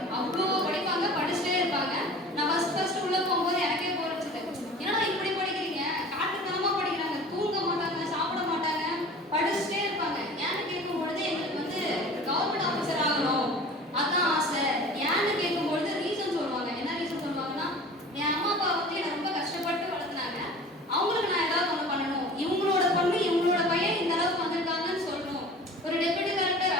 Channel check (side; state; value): both; normal; correlation 0.41